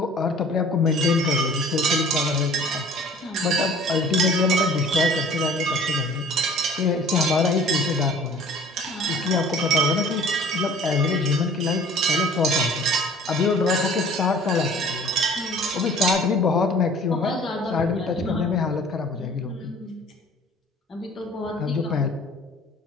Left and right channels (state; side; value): normal; both; correlation 0.49